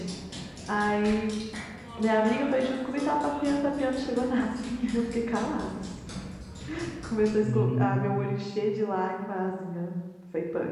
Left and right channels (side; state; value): both; identical; correlation 1.00